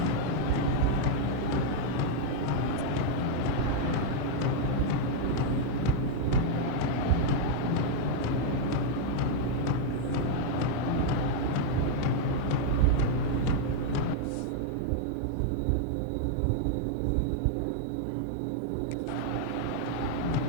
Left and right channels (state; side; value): different; both; correlation 0.00